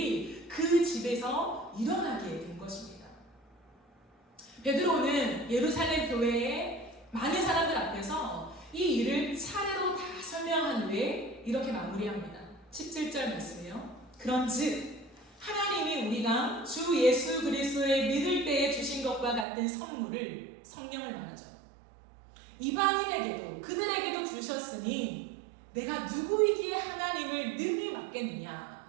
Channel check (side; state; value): left; drops out; at 19.5 s